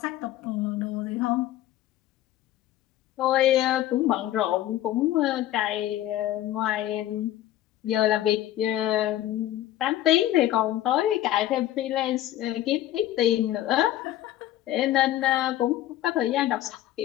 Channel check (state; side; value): quieter; right; 13.5 dB